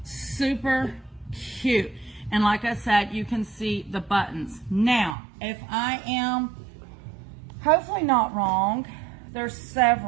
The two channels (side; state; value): left; drops out; at 5.2 s